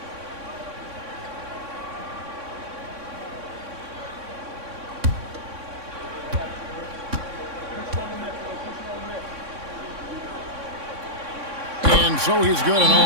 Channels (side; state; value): left; late; 3.6 ms